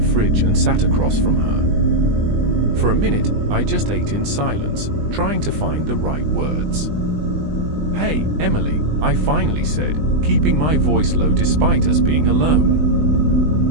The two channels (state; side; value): late; left; 20 ms